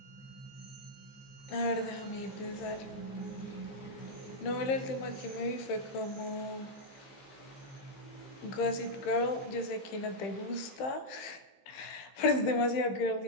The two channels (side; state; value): right; late; 15 ms